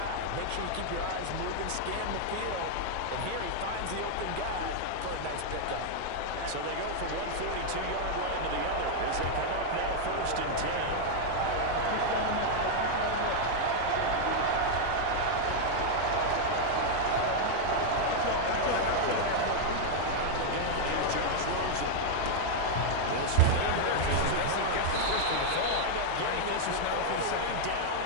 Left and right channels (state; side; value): different; both; correlation 0.00